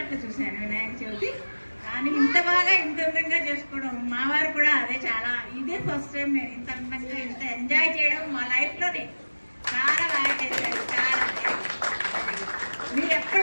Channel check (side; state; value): both; inverted; correlation -1.00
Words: చూశాను వినాయక చవితి, కానీ ఇంత బాగా ఇంత అందంగా చేసుకోవడం మా వారు కూడా అదే చాలా ఇదే ఫస్ట్ టైం నేను ఇంత అందంగా ఇంత ఎంజాయ్ చేయడం మా లైఫ్లోనే. చాలా బాగా చేశారు. చాలా మీరు